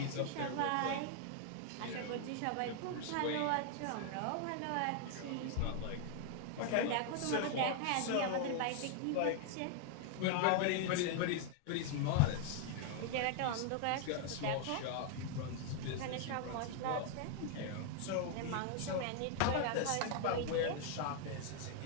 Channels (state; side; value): different; both; correlation 0.00